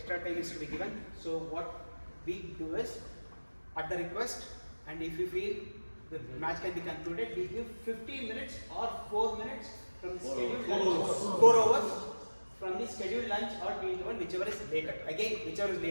time is to be given. So what we do is, at the request, and if we feel the match can be concluded, we give 15 minutes or 4 minutes from the scheduled lunch, 4 hours from the scheduled lunch or tea interval, whichever is later. Again, whichever is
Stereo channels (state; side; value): inverted; both; correlation -1.00